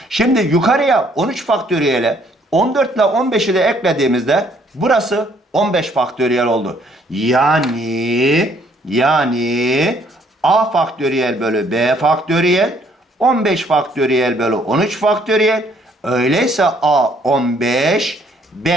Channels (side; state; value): both; normal; correlation 0.64